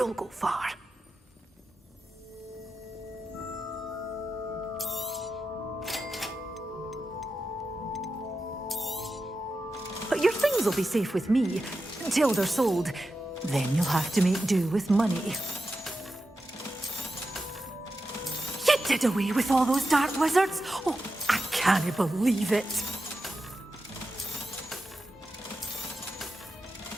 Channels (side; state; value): both; normal; correlation 0.91